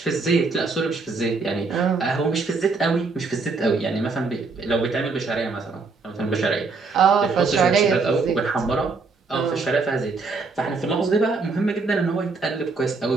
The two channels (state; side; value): quieter; left; 4.2 dB